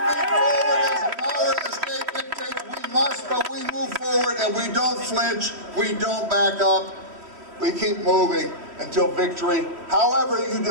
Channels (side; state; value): left; late; 3.1 ms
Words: forward as the power of the state dictates we must, but we move forward and we don't flinch, we don't back up, we keep moving until victory, however you